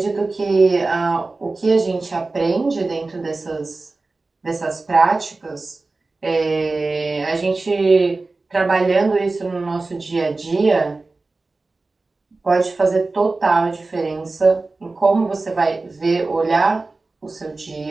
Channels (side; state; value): left; quieter; 3.5 dB